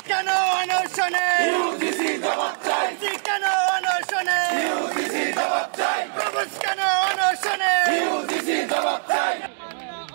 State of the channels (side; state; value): left; silent; digital silence